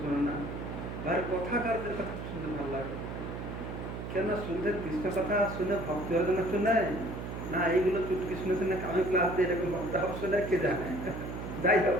শোনে না, ভাই কথাকারদের কথা শুনতে ভালো লাগে। কেন শুনতে কৃষ্ণ কথা শুনে ভক্তি হওয়ার জন্য শুনে না, এইগুলো চুটকি শুনেছে না, আমি ক্লাস দিয়ে এরকম ভক্ত হওয়া শুনে কে জানে। যাই হোক,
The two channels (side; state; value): right; noise; hum, 7 dB below the sound